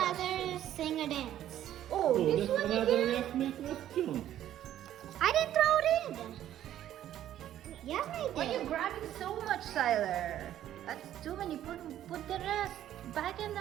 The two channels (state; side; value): quieter; left; 11.8 dB